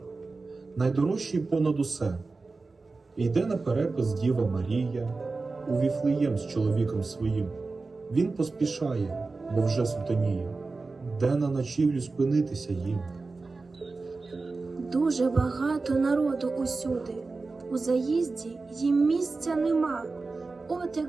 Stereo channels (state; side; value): quieter; left; 3.8 dB